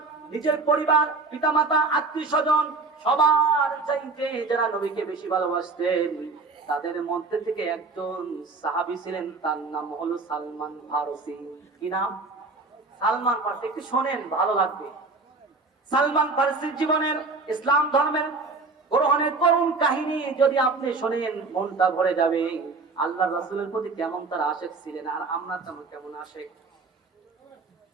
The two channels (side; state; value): left; quieter; 3.9 dB